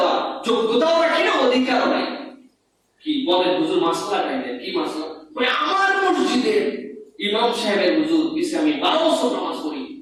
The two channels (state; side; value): identical; both; correlation 1.00